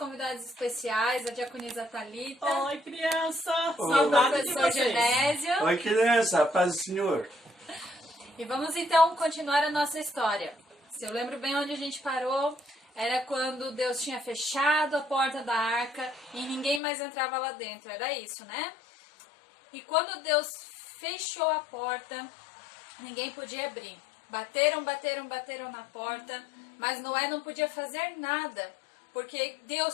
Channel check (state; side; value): drops out; right; at 16.8 s